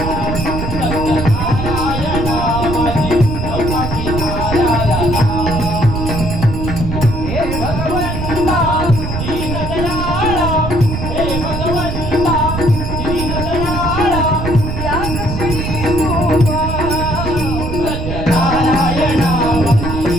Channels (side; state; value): right; noise; rumble, 4 dB below the sound